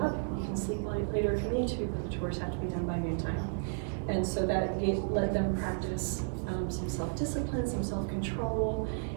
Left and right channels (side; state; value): left; silent; digital silence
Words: You can sleep later if you need to, but the chores have to be done by noon time. And so that let them practice some self-discipline, some self-control,